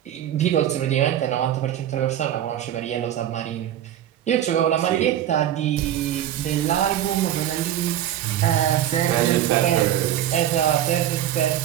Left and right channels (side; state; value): left; quieter; 11.6 dB